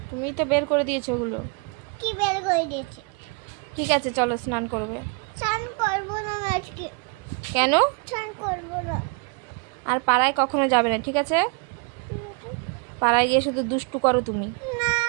তুমি তো বের করে দিয়েছো ওগুলো। কি বের করে দিয়েছি? ঠিক আছে চলো স্নান করবে। স্নান করবো না আমি আজকে, কেন? স্নান করবো না। আর পাড়ায় কখনো যাবে না, ঠিক আছে? ঠিক আছে? পাড়ায় গিয়ে শুধু দুষ্টু করো তুমি। না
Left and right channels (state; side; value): quieter; left; 33.6 dB